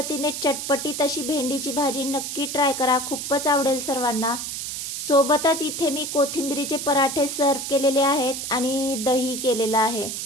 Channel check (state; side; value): noise; right; hiss, 5 dB below the sound